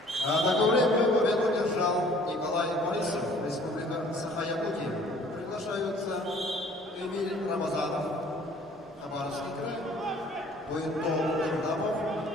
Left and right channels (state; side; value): normal; both; correlation 0.54